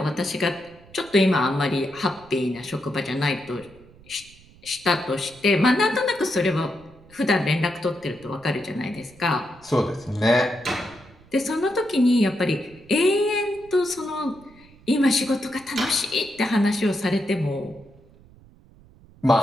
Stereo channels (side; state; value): right; noise; rumble, 25 dB below the sound